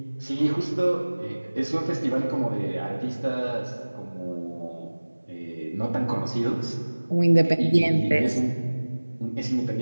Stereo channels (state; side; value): inverted; both; correlation -1.00